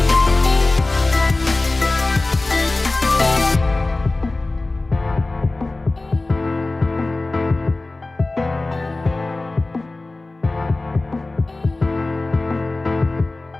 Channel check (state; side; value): quieter; right; 3.1 dB